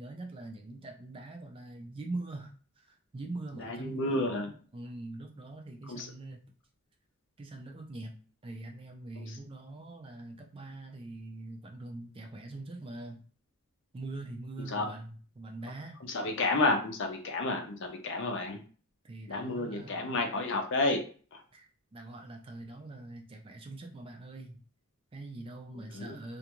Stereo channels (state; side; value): normal; both; correlation 0.07